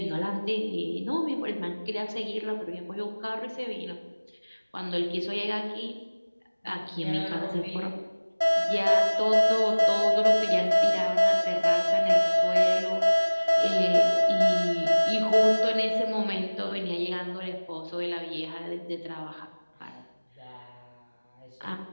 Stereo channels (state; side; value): inverted; both; correlation -1.00